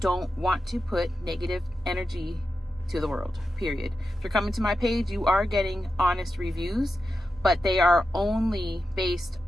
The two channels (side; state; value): both; normal; correlation 0.90